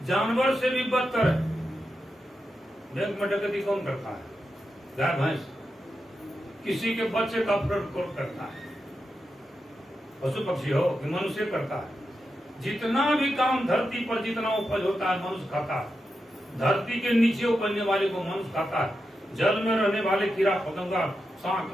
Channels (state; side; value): normal; both; correlation 0.88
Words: जानवर से भी बदतर है। बैंक में डकैती कौन करता है, गाय भैंस। किसी के बच्चे का अपहरण कौन करता है, पशु पक्षी हो कि मनुष्य करता है। जितना भी काम धरती पर जितना उपज होता है मनुष्य खाता है। धरती के नीचे उपजने वाले को मनुष्य खाता है। जल में रहने वाले कीड़ा पतंगा, सांप,